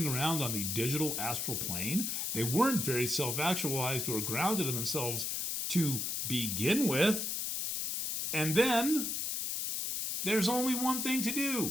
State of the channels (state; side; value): noise; left; hiss, 1 dB below the sound